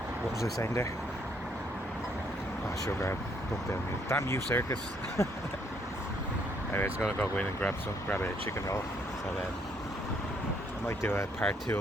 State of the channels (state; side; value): normal; both; correlation 0.69